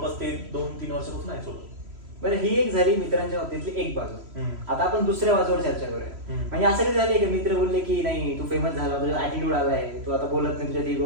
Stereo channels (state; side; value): late; left; 3.0 ms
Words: ते 2-3 वर्षापासून आहे सोबत. बरं, ही एक झाली मित्रांच्या बाबतीतली एक बाजू. आता आपण दुसऱ्या बाजूवर चर्चा करूया. म्हणजे असं कधी झालंय की मित्र बोलले की नाही तू फेमस झाला, तुझा ऍटिट्यूड आलाय, तू आता बोलत नाही, तुझ्या इगो